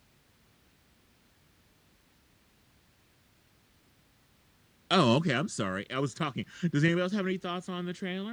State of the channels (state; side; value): identical; both; correlation 1.00